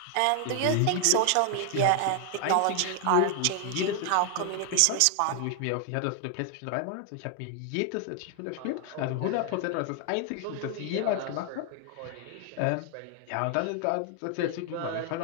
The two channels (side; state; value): both; different; correlation 0.00